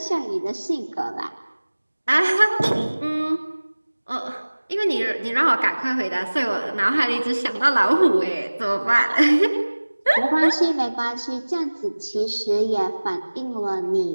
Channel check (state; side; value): inverted; both; correlation -1.00